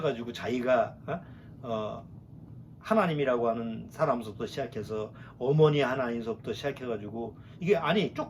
자기가 하나님이라고 하는 사람부터 시작해서 어머니 하나님서부터 시작해가지고 이게 아니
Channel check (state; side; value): identical; both; correlation 1.00